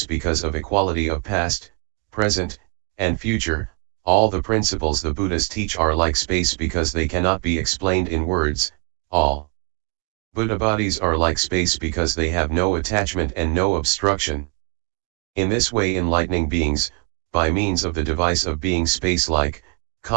because of equality of past, present, and future, all the principles the Buddhas teach are like space because they cannot be explained in words, all Buddha bodies are like space because they have no attachment and no obstruction. In this way enlightening beings, by means of the device of being space-like,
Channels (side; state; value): left; quieter; 35.4 dB